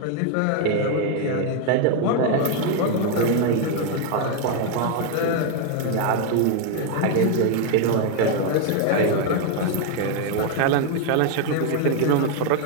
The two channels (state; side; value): different; both; correlation 0.00